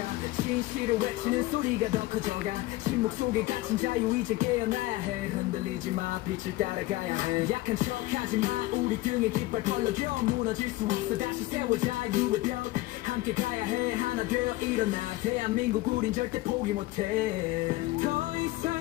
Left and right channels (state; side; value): quieter; right; 18.4 dB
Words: 진실을 외치는 소리가 더 커져가 침묵 속에 갇힌 자유 이제 깨어나야 해 흔들리지 마 빛을 따라가야 해 약한 척하지 마 우리 등에 깃발 펄럭여 무너질 수 없어 다시 세워 자유의 벽 함께 가야 해 하나 되어 일어나 대한민국 우린 절대 포기 못해 더